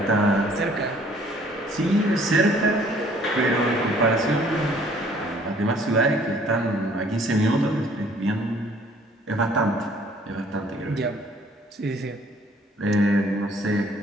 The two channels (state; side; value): normal; both; correlation 0.58